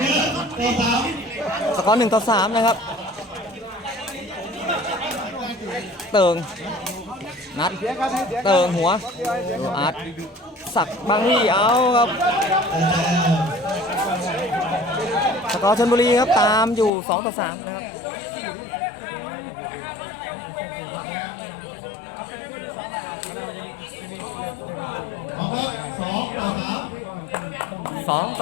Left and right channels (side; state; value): right; drops out; at 16.9 s